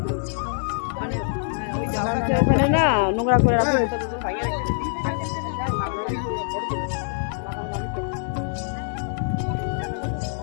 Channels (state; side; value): silent; right; digital silence